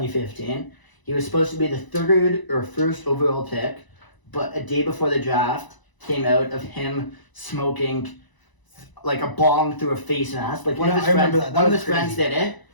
He was supposed to be the 3rd or 1st overall pick, but a day before the draft came out of him smoking like a bong through a face mask. Like one of Yeah, his I remember friends, that. That one of was his friends crazy. did it.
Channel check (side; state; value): right; late; 1.0 ms